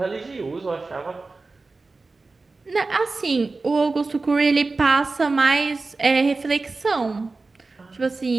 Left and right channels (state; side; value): quieter; left; 3.7 dB